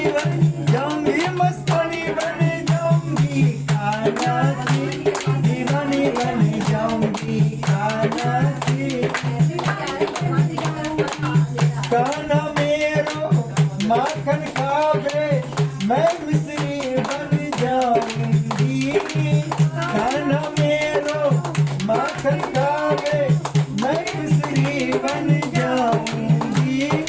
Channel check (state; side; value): identical; both; correlation 1.00